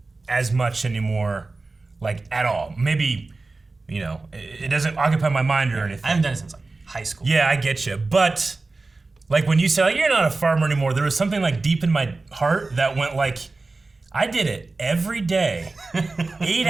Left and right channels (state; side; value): quieter; left; 3.5 dB